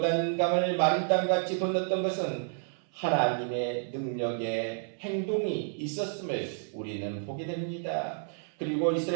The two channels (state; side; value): silent; left; 58 dB below the other